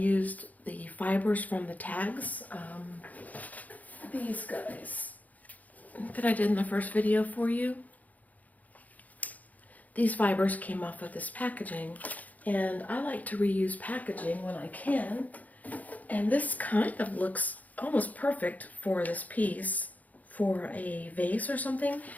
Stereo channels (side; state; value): right; late; 0.077 ms